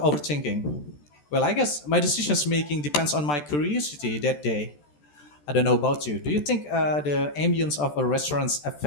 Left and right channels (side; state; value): right; late; 14 ms